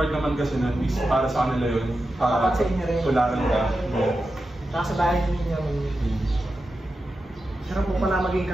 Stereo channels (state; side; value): normal; both; correlation 0.91